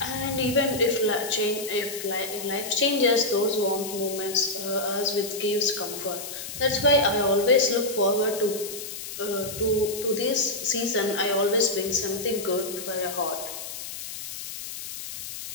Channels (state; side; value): noise; left; hiss, 9 dB below the sound